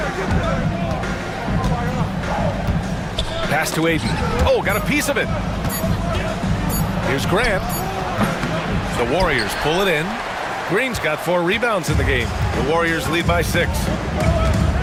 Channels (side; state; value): both; identical; correlation 1.00